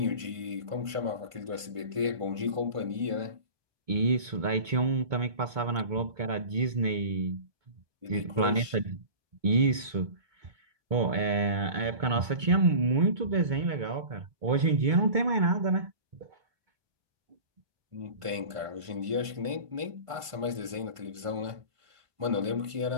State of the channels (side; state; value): left; late; 1.5 ms